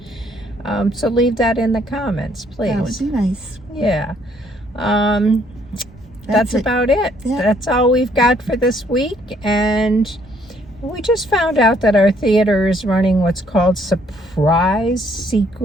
So leave that in the comments, please. That would be nice. Yeah. That's about it. Yeah. That's all we've got for this week. And we just found out that our theater is running what's called surprise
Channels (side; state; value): both; normal; correlation 0.65